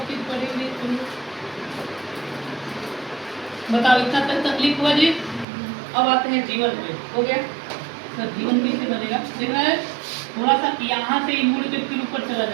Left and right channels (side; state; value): left; drops out; at 5.5 s